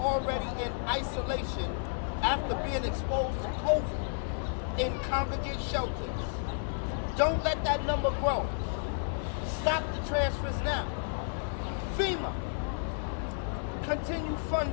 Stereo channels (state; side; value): silent; right; 56 dB below the other